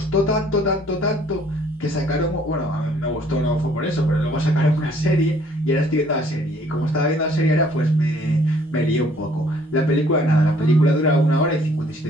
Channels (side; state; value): both; normal; correlation 0.60